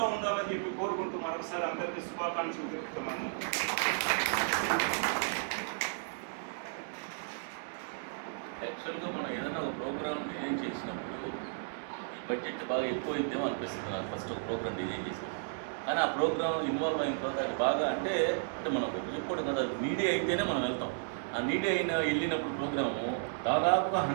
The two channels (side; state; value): left; silent; digital silence